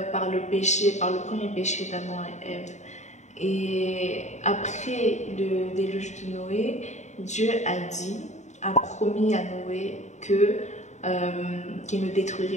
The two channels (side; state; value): right; late; 0.34 ms